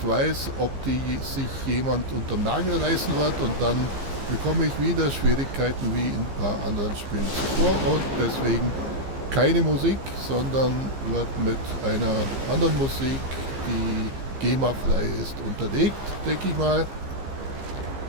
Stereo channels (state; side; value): late; left; 15 ms